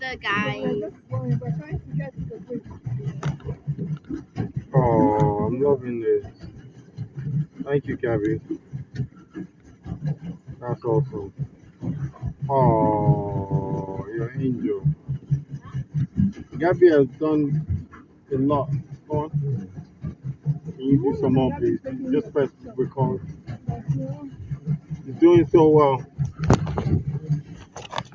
guys. We're trying to get to the bridge. Oh, I'm loving this. Thank you, Gabby. That's awesome. Oh, you're an angel. Gabby has done a lot. Go on. Can you do some more, please? Just press record. You're doing so well.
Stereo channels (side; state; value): both; identical; correlation 1.00